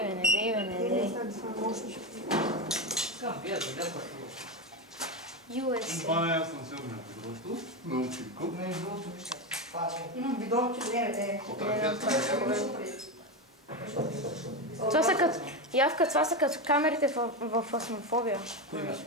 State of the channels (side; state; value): both; normal; correlation 0.14